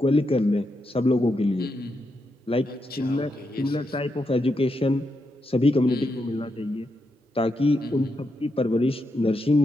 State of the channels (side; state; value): both; normal; correlation 0.84